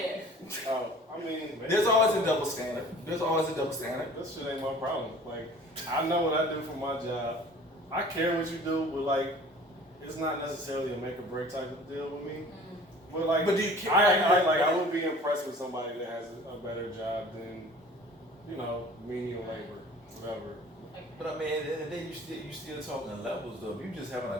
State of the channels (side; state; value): both; normal; correlation 0.46